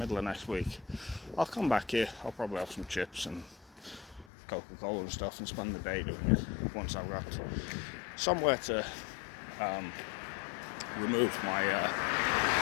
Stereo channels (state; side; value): drops out; right; at 4.2 s